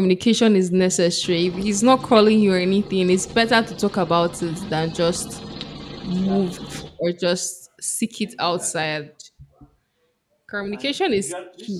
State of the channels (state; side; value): identical; both; correlation 1.00